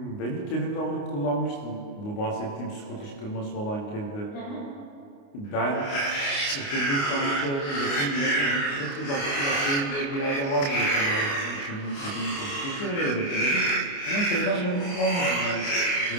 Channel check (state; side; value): late; right; 29 ms